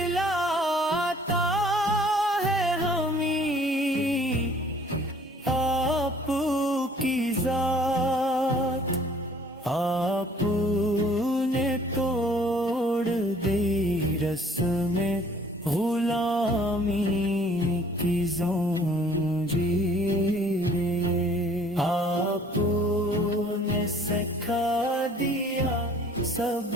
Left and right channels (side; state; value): both; normal; correlation 0.56